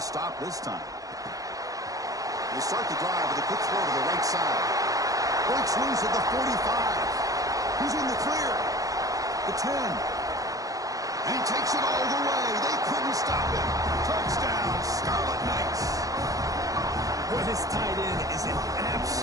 this time? They start the drive with a quick throw to the right side. Breaks loose at the 45. He's in the clear. The 10. And he takes it all the way. They couldn't stop him. Touchdown, Scarlet Knights. Boy, this tight end is an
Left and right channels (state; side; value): late; left; 0.17 ms